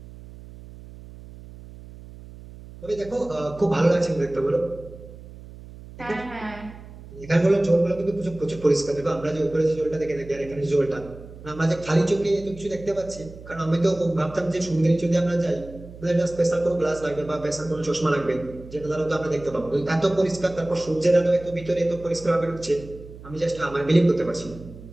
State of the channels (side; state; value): right; noise; hum, 17 dB below the sound